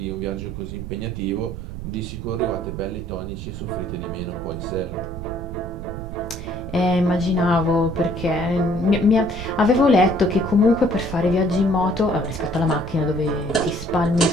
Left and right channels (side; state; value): right; noise; rumble, 9 dB below the sound